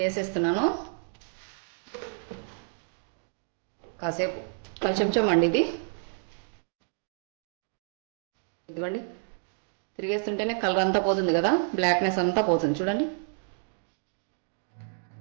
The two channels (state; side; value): silent; left; digital silence